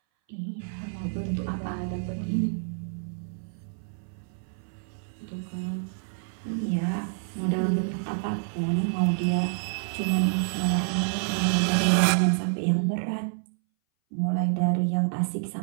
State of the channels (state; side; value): silent; left; 59 dB below the other